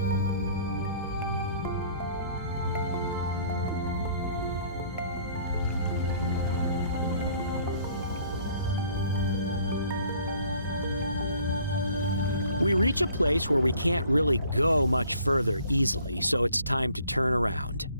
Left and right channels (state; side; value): inverted; both; correlation -0.57